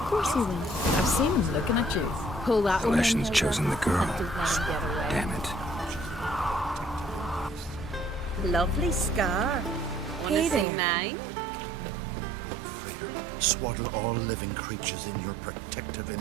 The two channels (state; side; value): drops out; left; at 10.7 s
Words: course he will. I've seen him looking at you. Pull that The one in, Leshen's Hilda. chosen the girl. Don't let him get away. Damn it. Lovely scar. Hey there. mine? Swaddle all living creatures in your protective